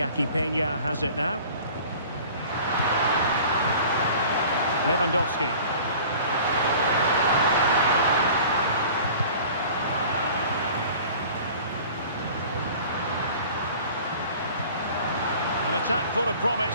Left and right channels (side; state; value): both; inverted; correlation -0.45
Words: Peña has it now. Lewandowski. An attack full of promise.